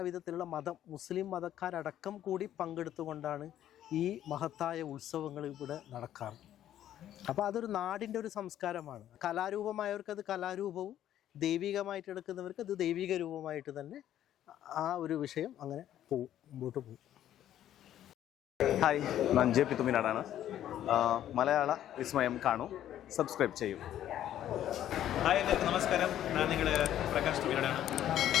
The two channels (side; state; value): right; quieter; 11.6 dB